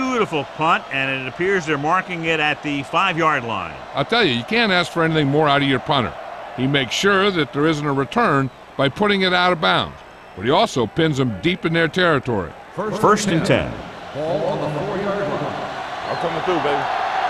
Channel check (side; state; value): both; identical; correlation 1.00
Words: punt, and it appears they're marking it at the 5-yard line. I'll tell you, you can't ask for anything more out of your punter. He makes sure that there isn't a return by putting it out of bounds, but he also pins them deep in their territory. First and 10. Ball on the 4-yard line. I'm coming through, baby.